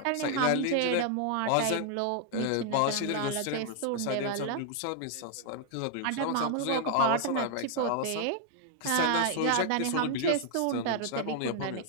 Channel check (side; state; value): both; different; correlation 0.00